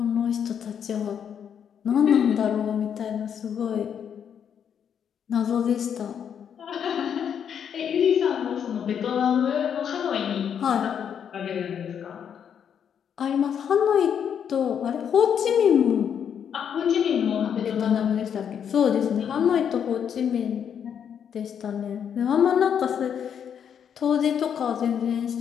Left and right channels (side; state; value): right; quieter; 8.2 dB